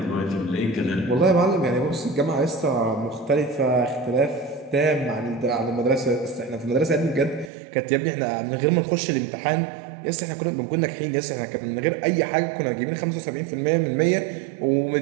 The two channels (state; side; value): drops out; left; at 7.5 s